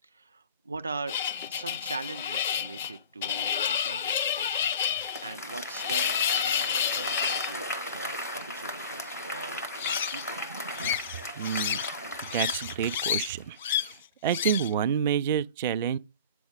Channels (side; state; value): both; inverted; correlation -0.39